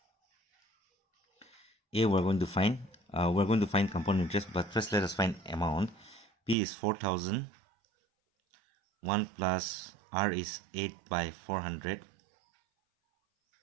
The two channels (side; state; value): left; drops out; at 6.6 s